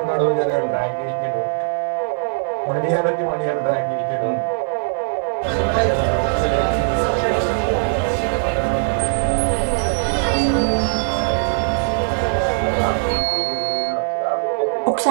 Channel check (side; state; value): left; silent; digital silence